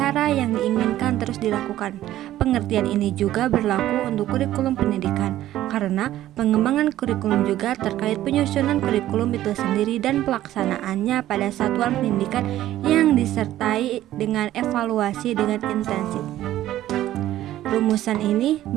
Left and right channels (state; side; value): quieter; left; 13.6 dB